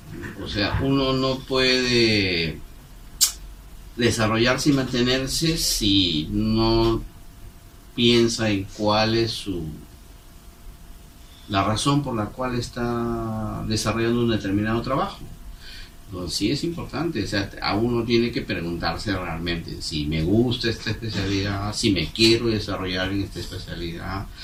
O sea, uno no puede desarrollarse y mantenerse si no piensa en cuál es la razón por la cual está desarrollando un determinado trabajo. Entonces, sí es importante, o sea, a uno tiene que preguntarse realmente si me gusta esta especialidad, si me quiero desarrollar en esta especialidad,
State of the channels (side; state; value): both; identical; correlation 1.00